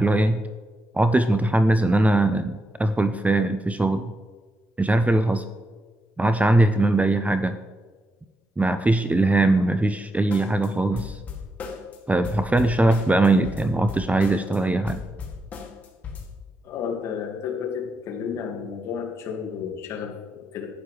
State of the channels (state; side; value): normal; both; correlation 0.85